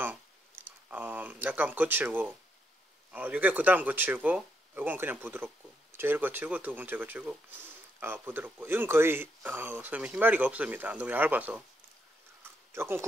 약간 거칠고, 이게 그 다음 거칠고, 이건 그냥 부드럽고, 제일 거칠고 두 번째 거칠고 부드럽고, 이건 거의 소위 희마리가 없습니다. 너무 얇아서 조금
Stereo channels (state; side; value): normal; both; correlation 0.78